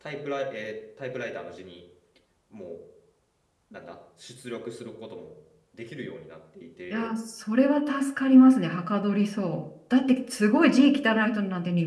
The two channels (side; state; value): both; identical; correlation 1.00